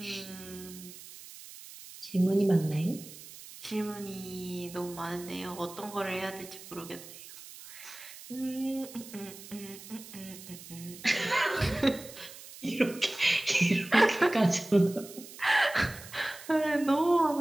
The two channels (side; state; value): right; noise; hiss, 16 dB below the sound